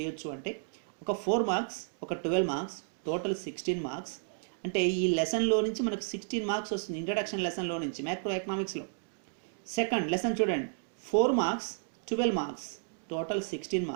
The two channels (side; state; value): left; silent; digital silence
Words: అంటే, ఒక 4 మార్క్స్, ఒక 12 మార్క్స్, టోటల్ 16 మార్క్స్. అంటే ఈ లెసన్లో నుంచి మనకు 16 మార్క్స్ వస్తుంది ఇంట్రడక్షన్ లెసన్లో నుంచి మ్యాక్రో ఎకనామిక్స్లో. సెకండ్ లెసన్ చూడండి, 4 marks, 12 marks, total 16